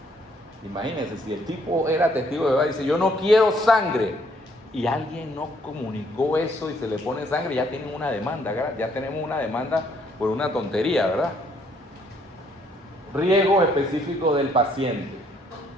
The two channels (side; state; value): both; normal; correlation 0.67